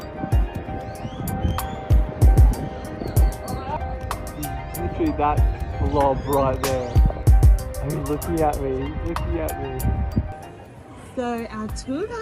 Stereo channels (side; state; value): both; identical; correlation 1.00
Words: He's literally that blob right there. He's looking at me, So our tour